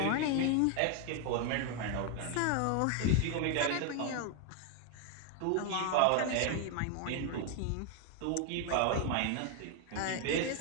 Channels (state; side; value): different; both; correlation 0.01